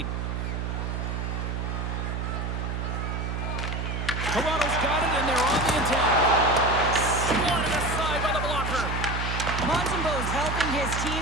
Toronto's got it, and they're on the attack. Swatted aside by the blocker. Montembeau's helping his team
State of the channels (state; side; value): noise; right; hum, 2 dB below the sound